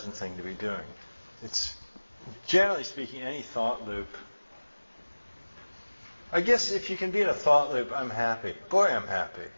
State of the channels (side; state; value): both; inverted; correlation -1.00